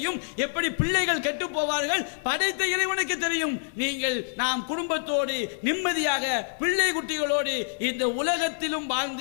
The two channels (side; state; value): right; silent; digital silence